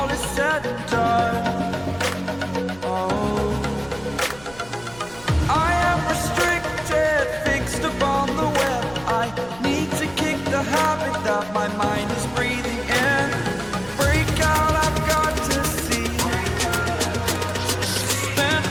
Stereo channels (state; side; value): noise; right; rumble, 21 dB below the sound